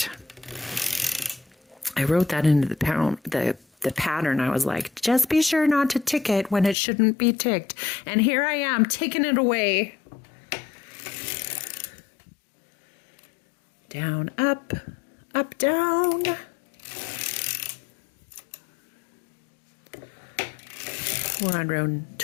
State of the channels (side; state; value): right; drops out; at 6.8 s